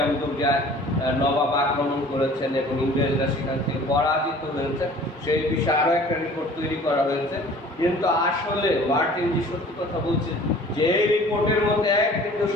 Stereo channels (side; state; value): both; normal; correlation 0.48